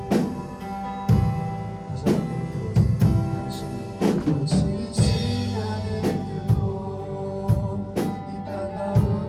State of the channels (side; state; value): both; identical; correlation 1.00